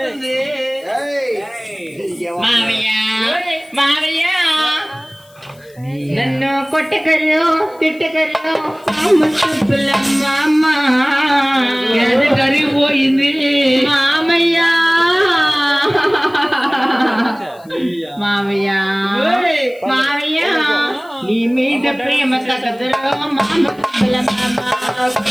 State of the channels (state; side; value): noise; left; hiss, 29 dB below the sound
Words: మామయ్య మామయ్య నన్ను కొట్టకరు తిట్టకరు అమ్మ కరిగిపోయింది మామయ్య. మామయ్య మామయ్య నీ మీద ప్రేమ తగదురో మామ